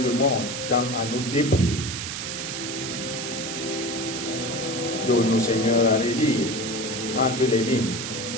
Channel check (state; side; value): noise; right; hiss, 5 dB below the sound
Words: le monde tend à nous dépouiller. Donne-nous, Seigneur, à relire entre les lignes